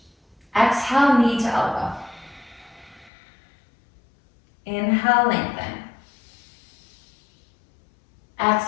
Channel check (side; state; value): right; drops out; at 3.1 s